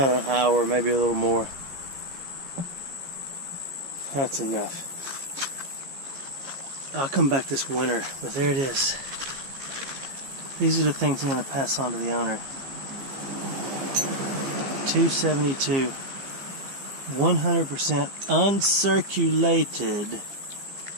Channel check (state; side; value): late; left; 15 ms